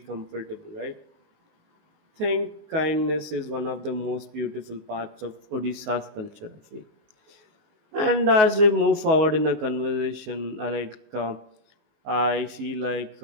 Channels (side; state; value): left; late; 19 ms